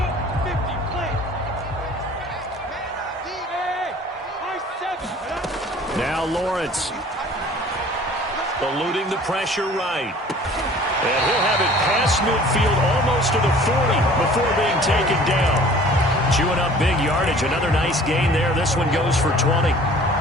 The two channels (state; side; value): normal; both; correlation 0.49